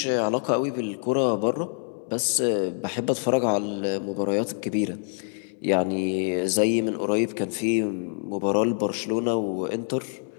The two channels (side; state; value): right; silent; digital silence